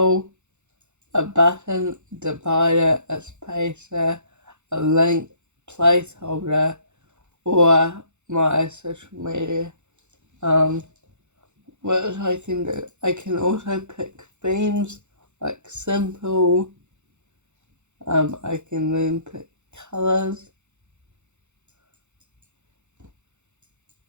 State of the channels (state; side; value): late; left; 0.83 ms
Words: a button, divider, a spacer, a link, placeholder, or my social media. What I can do, I can also pick themes like simple. I can then pick colors